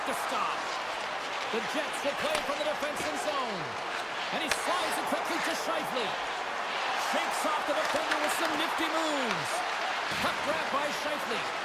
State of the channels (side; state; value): both; identical; correlation 1.00